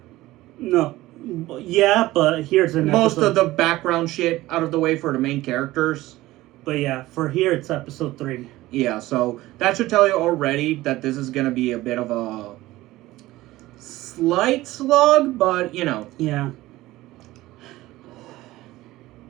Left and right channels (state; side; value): quieter; left; 17.4 dB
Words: No. Yeah, but here's an most episode. of the background shit out of the way for the main characters. But yeah, for here it's episode 3. Yeah, so that should tell you already that this is going to be a bit of a slight slog, but you know. Yeah.